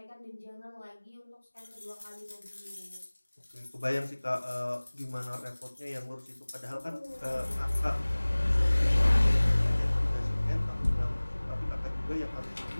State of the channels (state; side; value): inverted; both; correlation -1.00